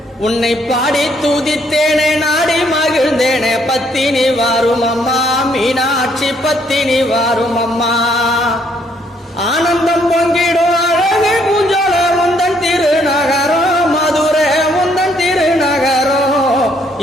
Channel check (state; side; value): normal; both; correlation 0.68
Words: உன்னை பாடி துதித்தேனே நாடி மகிழ்ந்தேனே பத்தினி வாரும் அம்மா மீனாட்சி பத்தினி வாரும் அம்மா ஆனந்தம் பொங்கிடும் அழகு பூஞ்சோல முந்தன் திருநகரம் மதுரை முந்தன் திருநகரம்